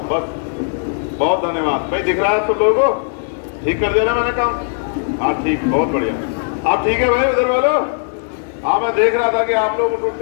बस। बहुत धन्यवाद भाई। दिख रहा है सब लोगों को? ठीक कर दिया ना मैंने काम? हाँ ठीक, बहुत बढ़िया। आप ठीक है भाई उधर वालों? हाँ, मैं देख रहा था कि आप लोग उठ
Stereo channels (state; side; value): silent; right; digital silence